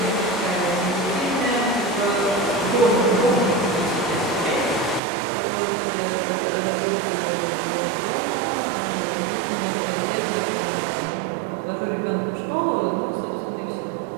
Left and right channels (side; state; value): left; drops out; at 5.0 s